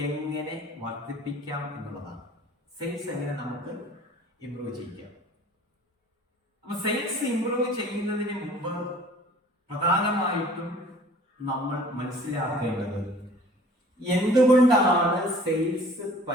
എങ്ങനെ വർദ്ധിപ്പിക്കാം എന്നുള്ളതാണ്. സെയിൽസ് എങ്ങനെ നമുക്ക് ഇംപ്രൂവ് ചെയ്യാം. അപ്പൊ സെയിൽസ് ഇംപ്രൂവ് ചെയ്യുന്നതിന് മുമ്പ് പ്രധാനമായിട്ടും നമ്മൾ മനസ്സിലാക്കേണ്ടത് എന്തുകൊണ്ടാണ് സെയിൽസ്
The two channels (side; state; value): both; normal; correlation 0.50